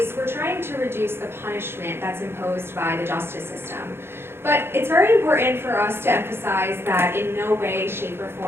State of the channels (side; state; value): left; late; 0.11 ms